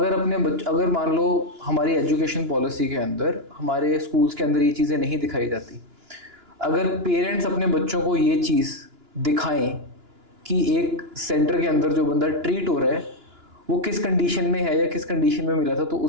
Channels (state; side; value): late; left; 2.9 ms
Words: अगर मान लो हमारी एजुकेशन पॉलिसी के अंदर, हमारे स्कूल्स के अंदर ये चीज़ें नहीं दिखाई जाती, अगर पेरेंट्स अपने बच्चों को ये चीज़ दिखाएं कि एक सेंटर के अंदर जो बंदा ट्रीट हो रहा है वो किस कंडीशन में है या किस कंडीशन में मिला था, तो